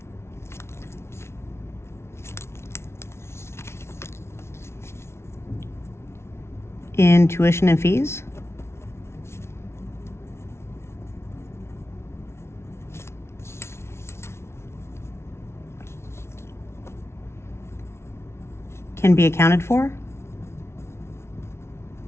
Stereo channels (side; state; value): right; late; 0.13 ms